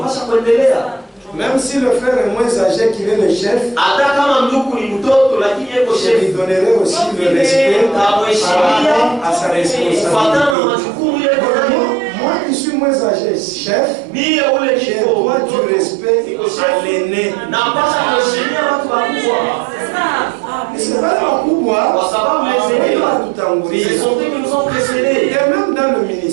Même si le frère est moins âgé qu'il est le chef, je lui donnerai aussi le respect par rapport à sa responsabilité. Moi qui suis moins âgé, chef, j'ai droit du respect à l'aîné. C'est pas le pouvoir, c'est son qui nous ont précédés. Et même dans le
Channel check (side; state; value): left; drops out; at 10.6 s